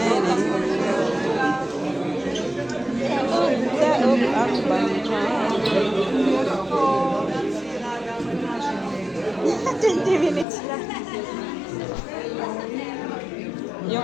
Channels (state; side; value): drops out; right; at 10.5 s